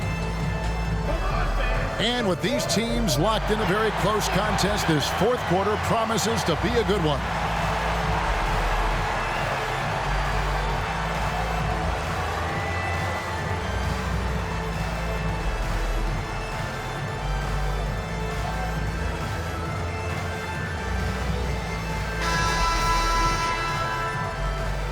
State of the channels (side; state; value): both; identical; correlation 1.00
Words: And with these teams locked in a very close contest, this fourth quarter promises to be a good one.